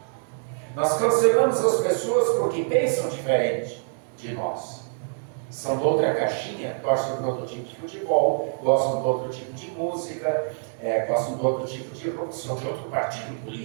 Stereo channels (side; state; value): left; silent; digital silence